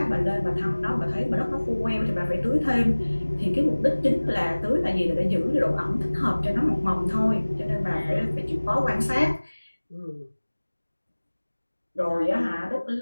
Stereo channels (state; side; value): inverted; both; correlation -1.00